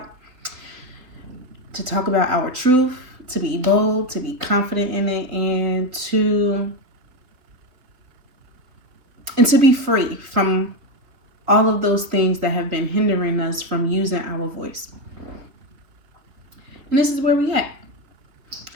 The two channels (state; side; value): late; left; 3.7 ms